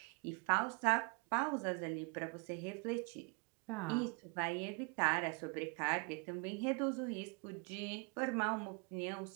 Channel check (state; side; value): quieter; left; 33.2 dB